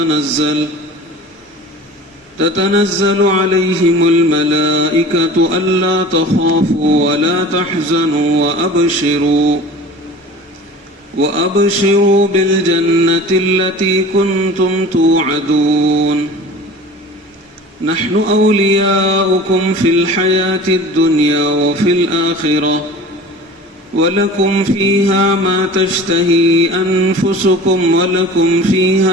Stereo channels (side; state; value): both; normal; correlation 0.40